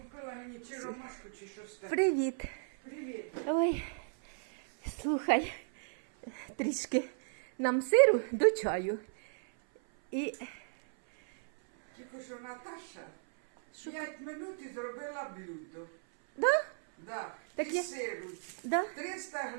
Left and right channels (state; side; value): silent; left; 55 dB below the other